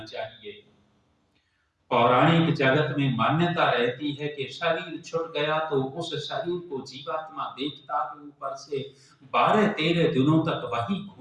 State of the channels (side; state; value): both; identical; correlation 1.00